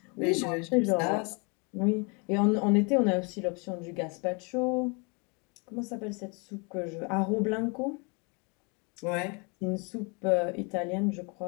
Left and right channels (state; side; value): quieter; right; 32.3 dB